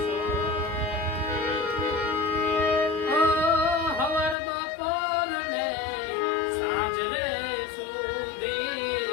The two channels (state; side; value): drops out; right; at 4.4 s